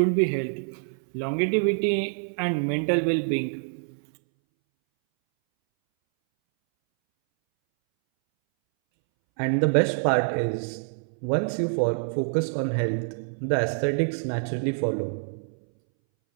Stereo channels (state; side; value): silent; left; 61 dB below the other